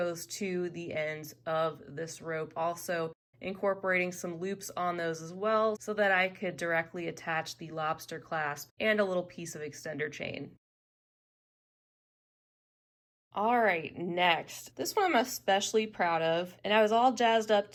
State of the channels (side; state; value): both; identical; correlation 1.00